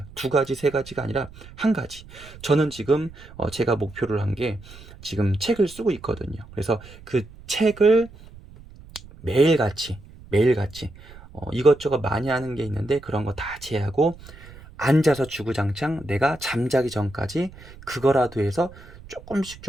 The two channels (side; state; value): right; noise; rumble, 19 dB below the sound